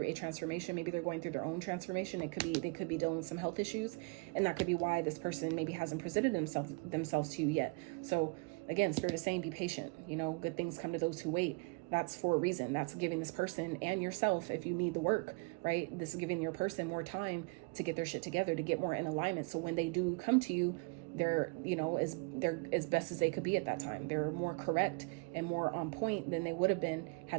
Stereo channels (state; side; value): quieter; left; 29.9 dB